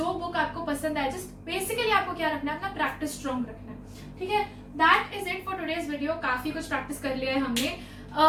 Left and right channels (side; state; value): both; identical; correlation 1.00